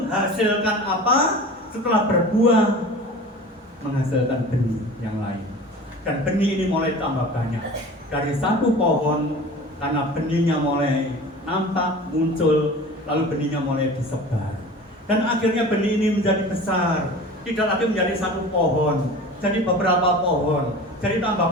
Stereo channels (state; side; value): normal; both; correlation 0.38